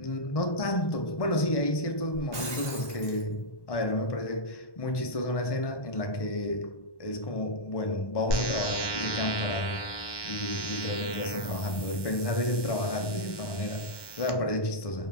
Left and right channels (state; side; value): late; right; 1.1 ms